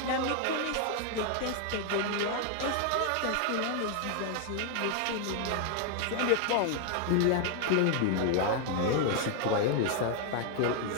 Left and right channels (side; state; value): both; different; correlation 0.00